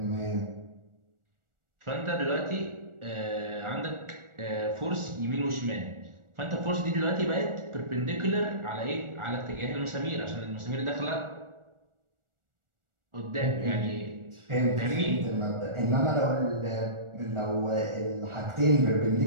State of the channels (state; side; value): late; left; 1.4 ms